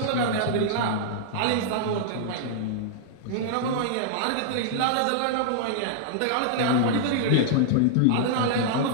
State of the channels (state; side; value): different; both; correlation -0.01